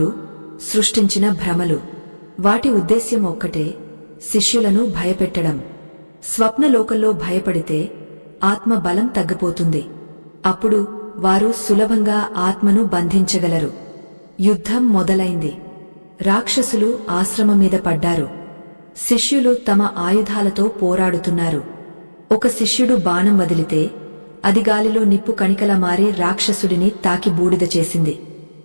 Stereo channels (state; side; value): inverted; both; correlation -1.00